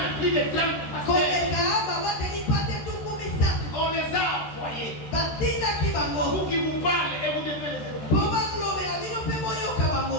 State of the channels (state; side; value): late; right; 13 ms